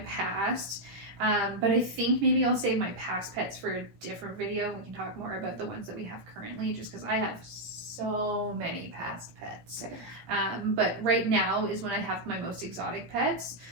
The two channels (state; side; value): late; left; 17 ms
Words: past, but I think maybe I'll save my past pets for a different video. We can talk more about the ones that we have currently, just because I have so many past pets. But right now is when I have my most exotic pets.